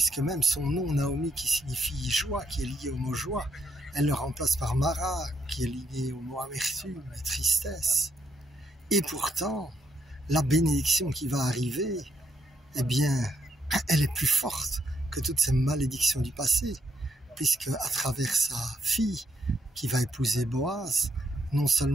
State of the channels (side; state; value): both; normal; correlation 0.76